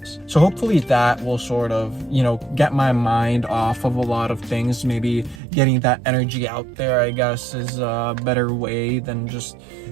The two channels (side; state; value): left; drops out; at 5.4 s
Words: So hopefully that will sort of, get my mind off of a lot of things. Maybe getting that energy out there, I guess, is a better way than just